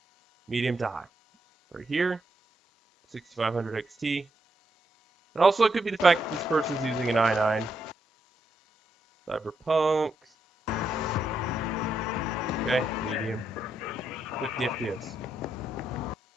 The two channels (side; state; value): both; normal; correlation 0.80